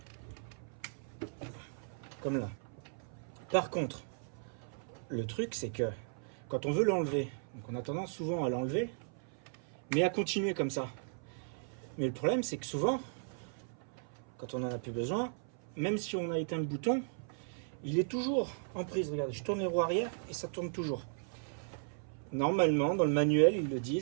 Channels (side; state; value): left; silent; 54 dB below the other